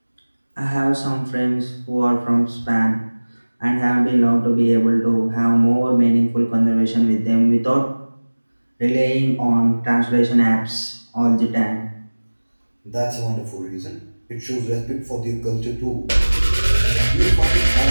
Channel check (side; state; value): both; inverted; correlation -1.00